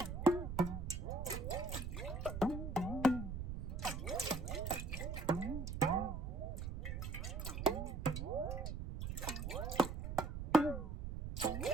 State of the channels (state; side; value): noise; right; rumble, 4 dB below the sound